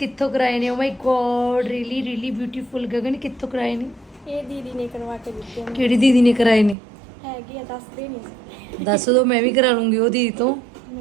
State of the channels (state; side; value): drops out; left; at 6.8 s